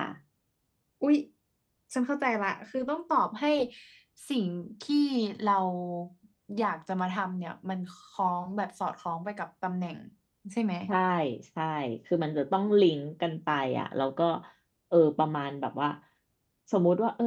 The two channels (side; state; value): both; identical; correlation 1.00